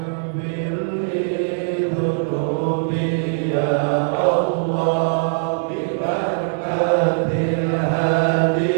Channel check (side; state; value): left; silent; digital silence